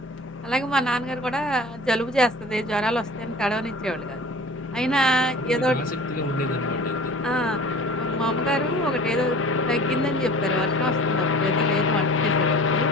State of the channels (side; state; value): both; normal; correlation 0.42